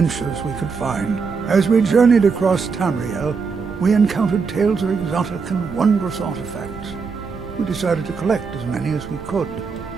we could find. As we journeyed across Tamriel, we encountered tales of exotic and wondrous artifacts. We decided to collect as many as we could.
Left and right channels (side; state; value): left; quieter; 5.1 dB